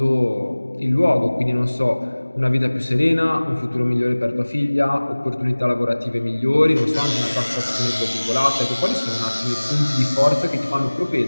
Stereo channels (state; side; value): inverted; both; correlation -1.00